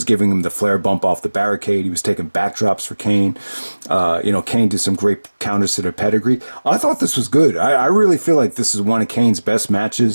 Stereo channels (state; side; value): inverted; both; correlation -1.00